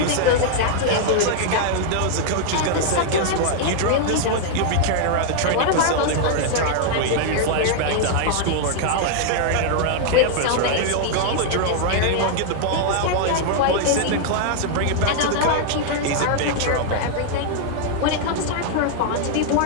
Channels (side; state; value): both; different; correlation -0.01